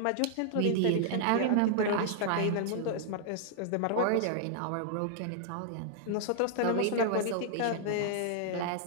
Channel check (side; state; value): both; different; correlation -0.01